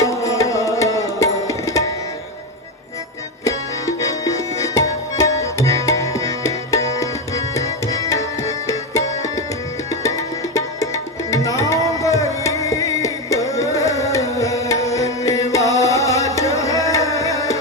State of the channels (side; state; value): both; normal; correlation 0.12